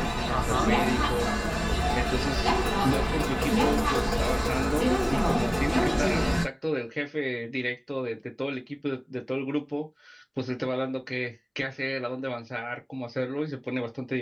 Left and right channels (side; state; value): both; identical; correlation 1.00